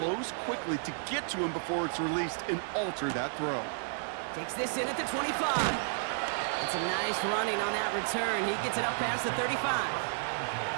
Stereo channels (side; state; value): left; silent; 56 dB below the other